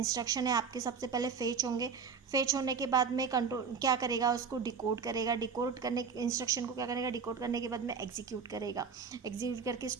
है आपके सबसे पहले फेच होंगे। फेच होने के बाद में कंट्रोल क्या करेगा, उसको डिकोड करेगा। डिकोड करने इंस्ट्रक्शन को क्या करेगा, डिकोड करने के बाद में एग्जीक्यूट करेगा। एग्जीक्यूट करके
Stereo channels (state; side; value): quieter; left; 5.9 dB